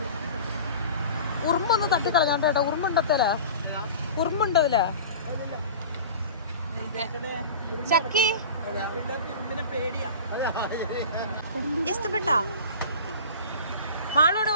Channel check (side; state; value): both; inverted; correlation -0.37